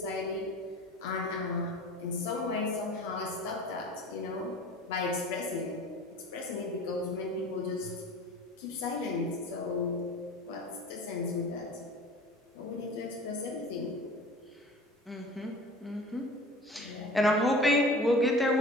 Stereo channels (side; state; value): both; normal; correlation 0.40